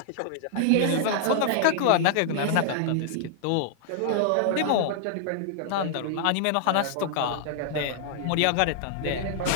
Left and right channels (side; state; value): both; different; correlation -0.01